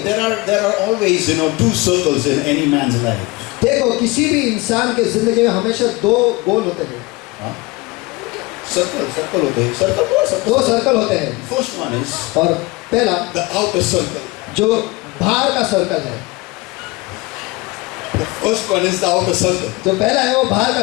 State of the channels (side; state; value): right; quieter; 22.9 dB